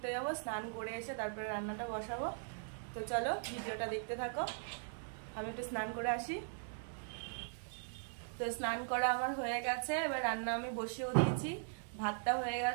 যাব, স্নান করে এসে তারপরে রান্নাটা বসাবো। তো চলো ভিডিওটা দেখতে থাকো। আমি একটু স্নান করে আসি। তো স্নান করা আমার হয়ে গেছে, এবার রান্না আমি বসিয়েও দিয়েছি। ভাতটা হয়ে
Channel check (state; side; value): silent; left; digital silence